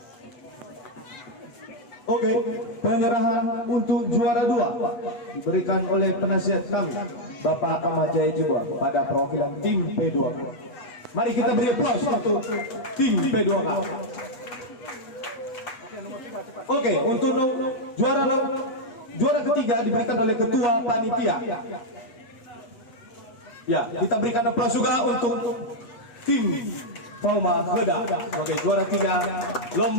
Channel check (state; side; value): late; right; 8.0 ms